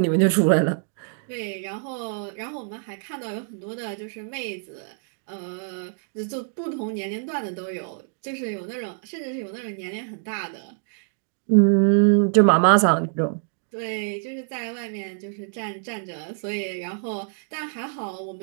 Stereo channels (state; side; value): silent; left; digital silence